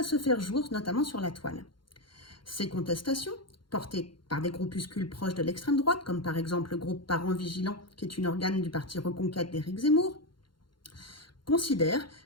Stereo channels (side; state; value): right; late; 0.72 ms